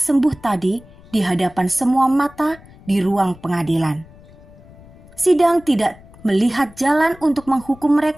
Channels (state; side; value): noise; left; rumble, 23 dB below the sound